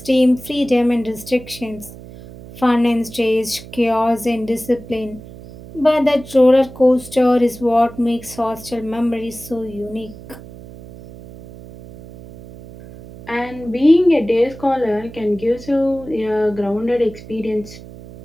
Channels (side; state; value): right; noise; hum, 17 dB below the sound